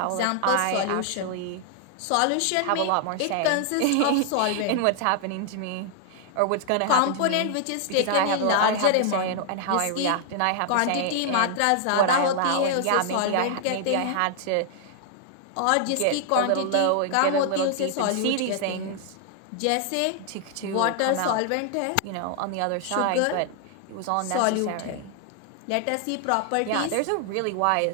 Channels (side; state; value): both; different; correlation 0.00